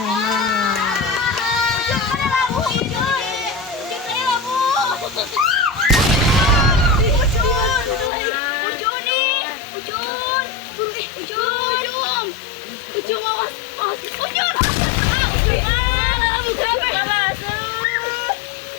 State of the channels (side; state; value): right; drops out; at 8.1 s